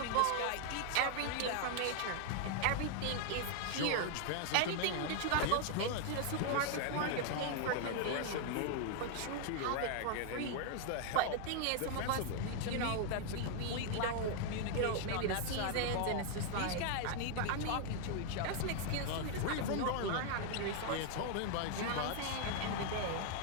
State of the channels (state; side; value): different; both; correlation 0.00